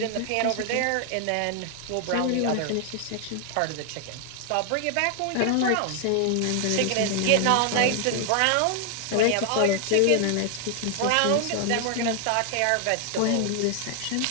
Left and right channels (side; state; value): both; different; correlation 0.00